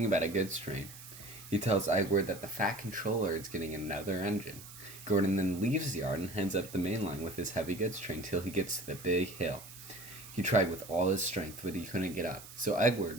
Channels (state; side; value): noise; right; hiss, 16 dB below the sound